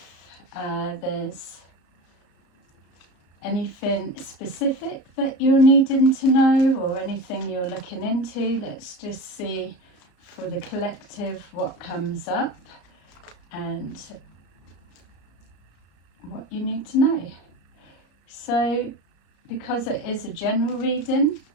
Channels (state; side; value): late; right; 33 ms